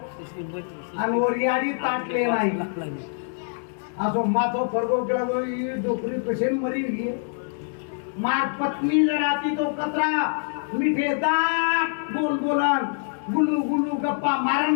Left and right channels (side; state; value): right; silent; digital silence